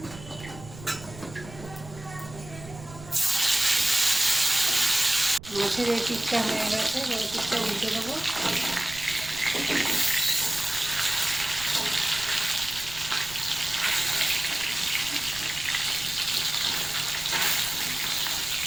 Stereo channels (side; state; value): right; noise; rumble, 16 dB below the sound